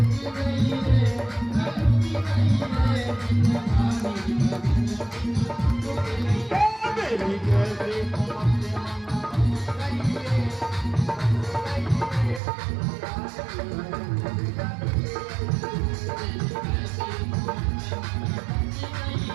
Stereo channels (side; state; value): left; drops out; at 12.4 s